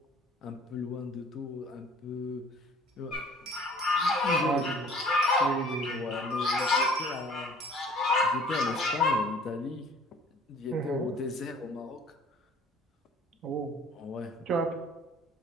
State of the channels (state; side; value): normal; both; correlation 0.51